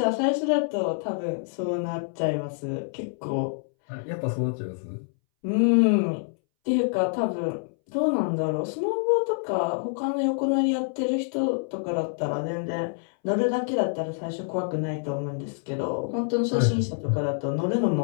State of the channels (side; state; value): right; silent; 61 dB below the other